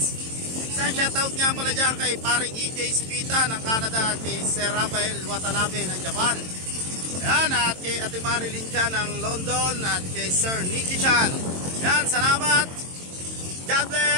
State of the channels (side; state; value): left; late; 22 ms